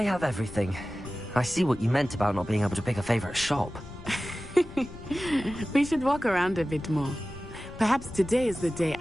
have everything. I see what you meant about not being able to pick a favorite shop. We should walk around a bit more. Perhaps today is the day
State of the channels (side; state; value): left; noise; rumble, 15 dB below the sound